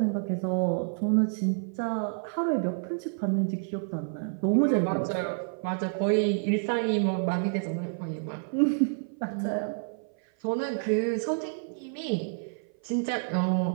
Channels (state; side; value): silent; left; 55 dB below the other